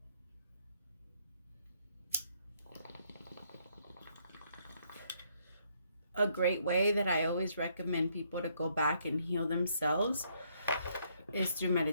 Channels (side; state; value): both; inverted; correlation -0.70